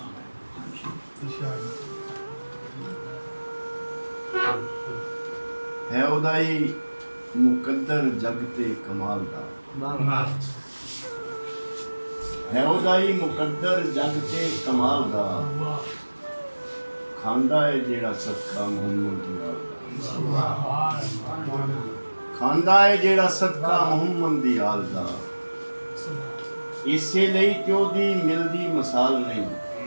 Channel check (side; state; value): both; inverted; correlation -1.00